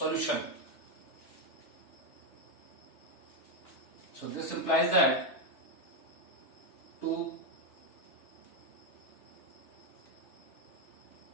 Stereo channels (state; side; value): late; right; 3.2 ms